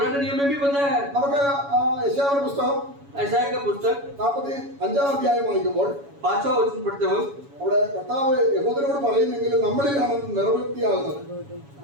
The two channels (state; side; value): late; left; 7.1 ms